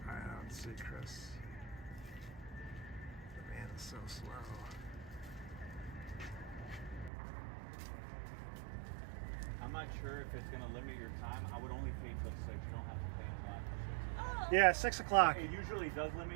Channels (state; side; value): drops out; left; at 7.1 s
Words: I don't see Chris. The man is so slow. I'm not sure if it's gonna limit your time. I would only pay till 6. You don't have to pay until after 6. Yeah, 6 o'clock. It usually does